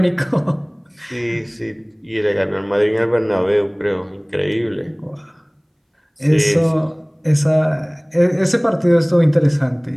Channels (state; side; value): identical; both; correlation 1.00